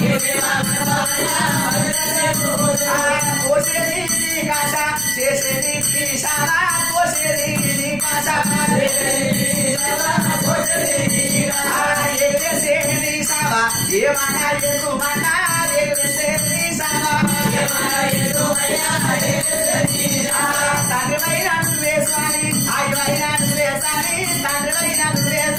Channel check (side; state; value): right; noise; rumble, 17 dB below the sound